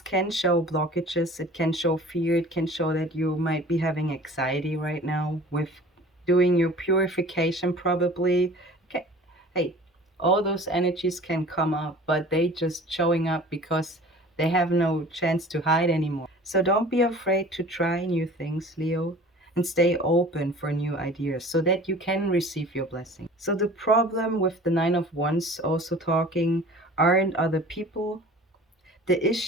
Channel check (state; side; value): normal; both; correlation 0.45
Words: can show blockages, it can show fear, it can show that you might be having anxiety right now with doing your purification probably. Okay. Hey, all those energies can come up, but they just showing up because they have no chance to hide anymore. So don't be afraid to try new things, Leo, and stay open for new ideas so that you can receive your blessing. So the problem with the Nine of Wands also talking aren't other people. The